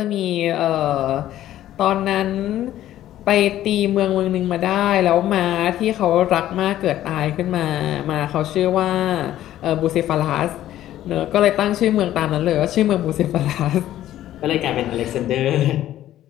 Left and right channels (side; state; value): right; quieter; 13.0 dB